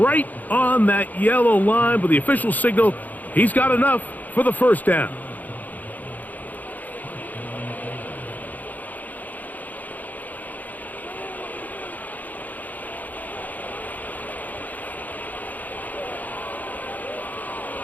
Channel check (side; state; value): right; late; 0.081 ms